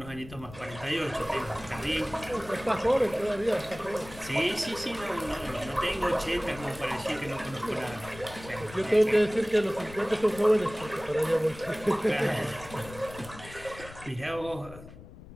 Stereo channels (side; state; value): left; noise; rumble, 16 dB below the sound